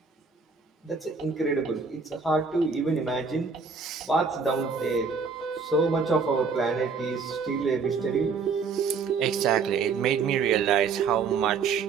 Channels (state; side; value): quieter; left; 5.2 dB